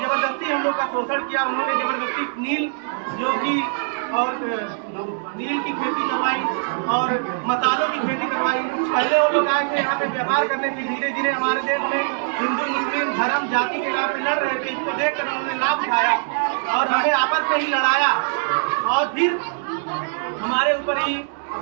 जबरदस्ती हम लोग का शोषण किया। उन्होंने जबरदस्ती नील जो कि और नील की खेती करवाई और मसालों की खेती करवाई। पहले वो लोग आए थे यहाँ पे व्यापार करने, फिर धीरे धीरे हमारे देश में हिंदू मुस्लिम धर्म जाति के नाम पे लड़ रहे थे। इसको देखकर उन्होंने लाभ उठाया और हमें आपस में ही लड़ाया और फिर हमारे ऊपर ही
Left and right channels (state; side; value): silent; left; digital silence